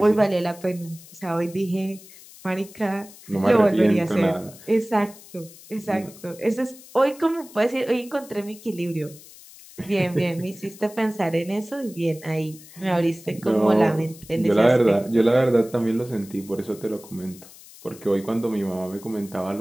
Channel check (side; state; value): left; noise; hiss, 20 dB below the sound